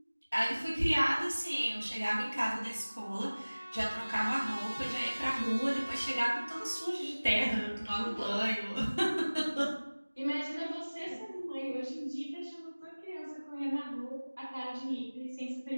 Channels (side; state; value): both; inverted; correlation -1.00